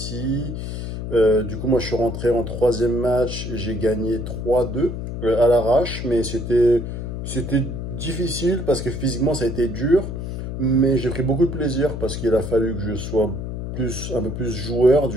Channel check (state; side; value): noise; left; hum, 6 dB below the sound